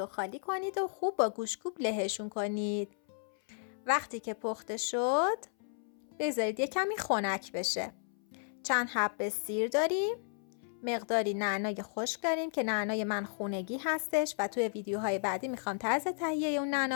خالی کنید و خوب با گوشتکوب لهشون کنید. وقتی که پخته شد بذارید یه کمی خنک بشه. چند حبه سیر داریم، مقداری نعنای خشک داریم که نعنای من خونگی هستش و توی ویدیوهای بعدی میخوام طرز تهیه اون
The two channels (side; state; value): right; silent; 55 dB below the other